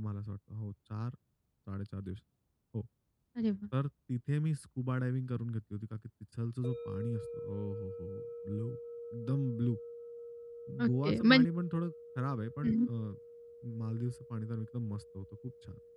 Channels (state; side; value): identical; both; correlation 1.00